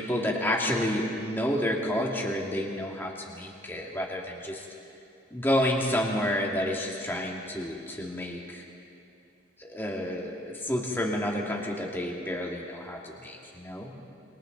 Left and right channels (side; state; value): both; normal; correlation 0.62